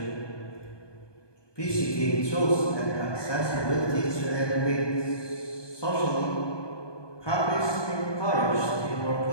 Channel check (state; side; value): late; right; 1.2 ms